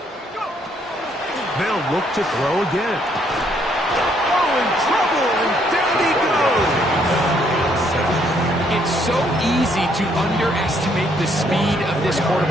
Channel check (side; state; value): both; normal; correlation 0.69